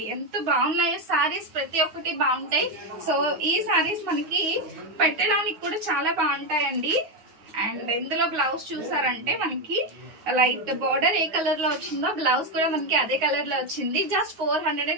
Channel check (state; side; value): late; left; 9.5 ms